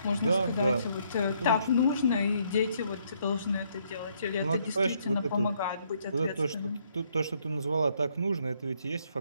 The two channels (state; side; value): inverted; both; correlation -0.70